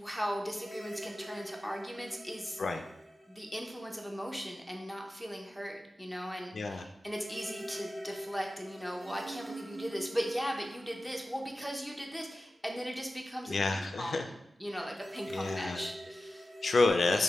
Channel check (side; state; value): both; normal; correlation 0.94